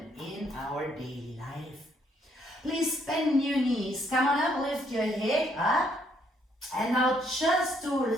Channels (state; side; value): normal; both; correlation 0.70